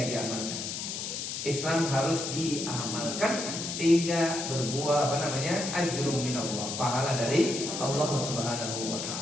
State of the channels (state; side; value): noise; left; hiss, 5 dB below the sound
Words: diamalkan. Islam harus diamalkan sehingga berbuah ajrum minallah, pahala dari Allah Subhanahu wa